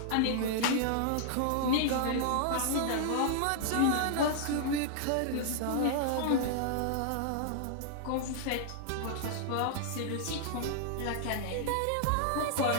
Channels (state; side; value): different; both; correlation -0.01